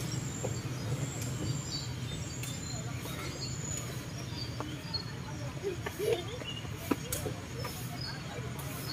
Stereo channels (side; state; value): both; identical; correlation 1.00